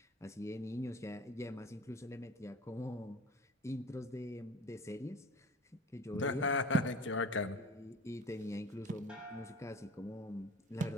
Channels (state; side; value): normal; both; correlation 0.40